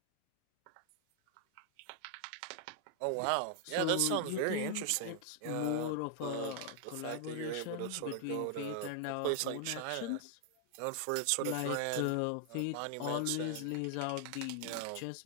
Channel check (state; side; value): different; both; correlation 0.00